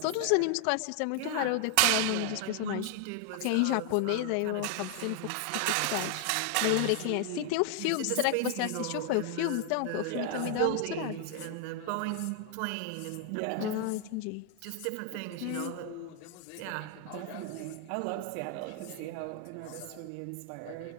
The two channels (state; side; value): different; both; correlation 0.00